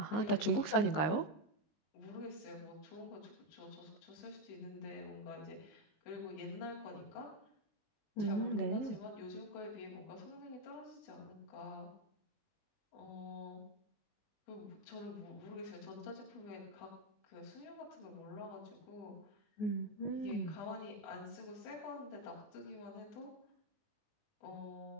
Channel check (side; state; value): right; late; 19 ms